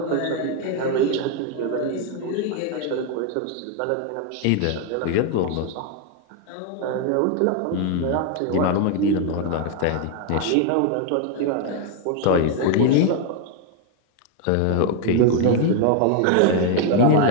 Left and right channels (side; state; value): both; different; correlation 0.01